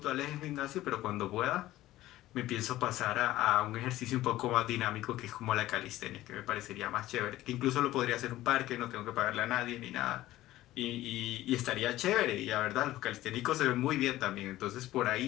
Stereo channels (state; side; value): quieter; right; 15.6 dB